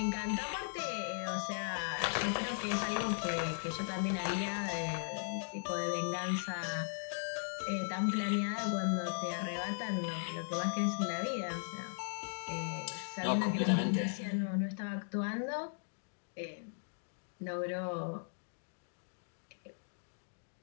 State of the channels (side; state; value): right; silent; digital silence